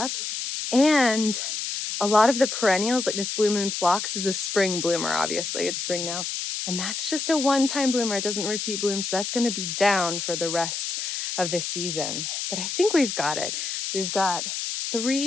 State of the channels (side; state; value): left; noise; hiss, 3 dB below the sound